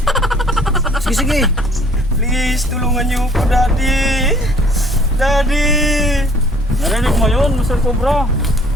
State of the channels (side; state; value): both; normal; correlation 0.56